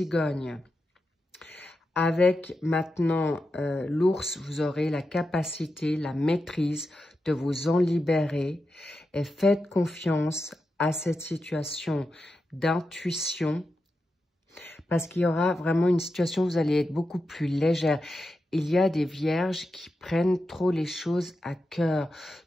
avec maintenant l'ours, vous aurez la capacité, la maîtrise de vous en libérer et faites confiance à cette situation d'intuition parce qu'il y aura vraiment une situation où vous allez être beaucoup plus légère. Il y a des vierges qui prennent trop les choses à cœur,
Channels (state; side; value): normal; both; correlation 0.89